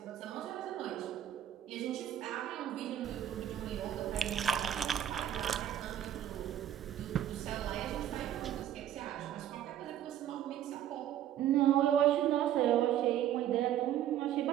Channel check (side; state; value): left; quieter; 11.2 dB